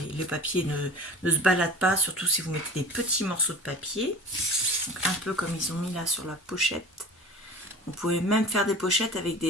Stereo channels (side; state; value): both; normal; correlation 0.37